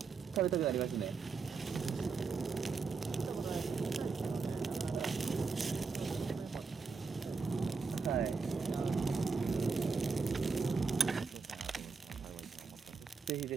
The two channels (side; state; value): left; quieter; 4.7 dB